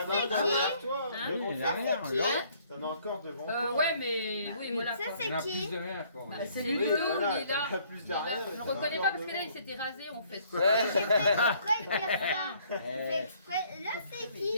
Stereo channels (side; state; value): both; inverted; correlation -0.62